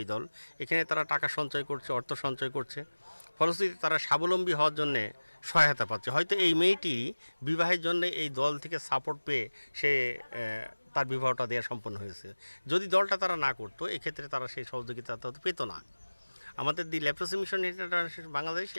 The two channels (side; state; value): both; inverted; correlation -1.00